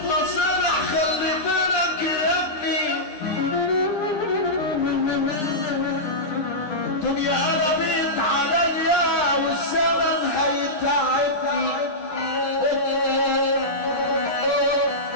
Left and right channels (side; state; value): right; late; 9.9 ms